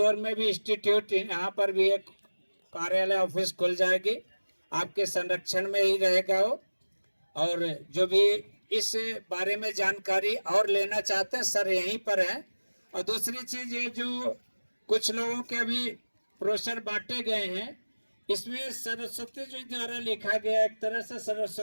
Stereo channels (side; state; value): both; inverted; correlation -1.00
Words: में भी इंस्टीट्यूट, यहाँ पर भी एक कार्यालय ऑफिस खुल जाएगी, आपके संरक्षण में ही रहेगा वो। और जो भी इस बारे में जानकारी और लेना चाहते हैं सर यहीं पर है। और दूसरी चीज ये जो कुछ लोगों के अभी ब्रोशर बांटे गए हैं, इसमें सरस्वती जी द्वारा लिखा गया, एक तरह से